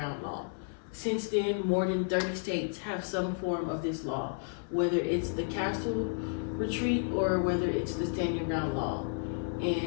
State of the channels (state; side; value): silent; right; 56 dB below the other